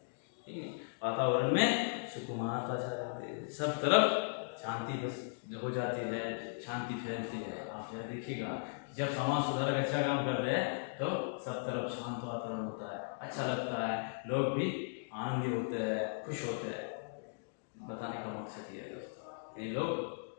ठीक है, वातावरण में सुकून आता जाते हैं, सब तरफ शांति बस हो जाती है, शांति फैलती है। आप यह देखिएगा जब समाज सुधारक अच्छा काम करते हैं तो सब तरफ शांत वातावरण होता है, अच्छा लगता है, लोग भी आनंदी होते हैं, खुश होते हैं। बताने का मकसद ये है दोस्तों, ये लोग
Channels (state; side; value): silent; right; digital silence